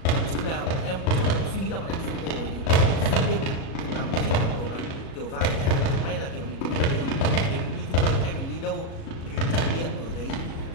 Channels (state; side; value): late; right; 37 ms